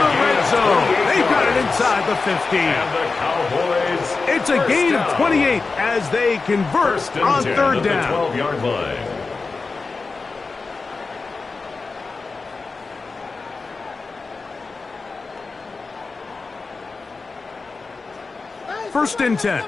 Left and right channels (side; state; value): right; quieter; 4.1 dB